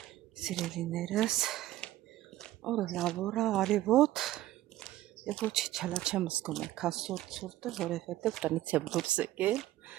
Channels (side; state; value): left; quieter; 15.0 dB